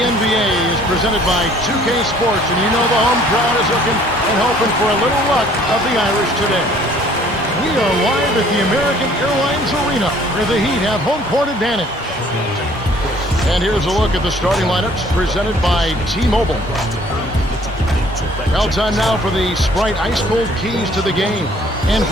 is presented by 2K Sports, and you know the home crowd is looking and hoping for a little luck of the Irish today. We are live at the American Airlines Arena, where the Heat have home court advantage. And here's a look at the starting lineups presented by T-Mobile. Well, time now for the Sprite Ice Cold Keys to the game. And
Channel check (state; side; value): normal; both; correlation 0.57